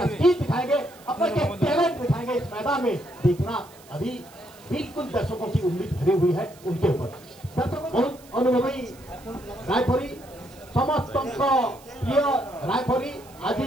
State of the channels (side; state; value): right; noise; hiss, 24 dB below the sound